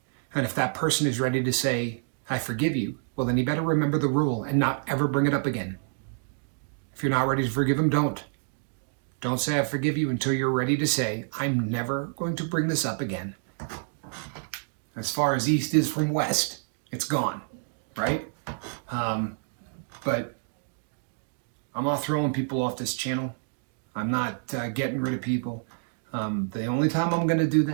And if that person is ready to say, I forgive you, well, then you better remember the rule and not ever bring it up again. If you're not ready to forgive him, don't. Don't say I forgive you until you're ready to say, I'm never going to bring this up again. As far as east is from west, it's gone, right? But I'm not throwing people off this channel. I'm not getting rid of people. The only time I'm going to do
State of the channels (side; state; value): left; silent; digital silence